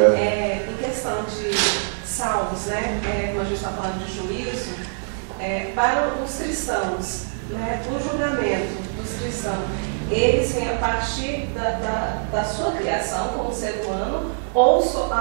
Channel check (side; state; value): left; silent; digital silence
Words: Em questão de salmos, né? Como a gente está falando de juízo, para os cristãos, né? O julgamento dos cristãos, eles vêm a partir da sua criação como ser humano ou